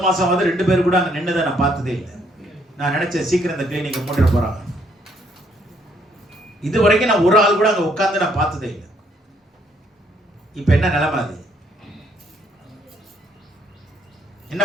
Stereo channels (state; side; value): normal; both; correlation 0.69